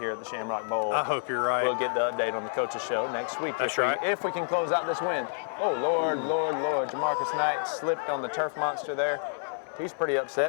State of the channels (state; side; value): silent; right; 59 dB below the other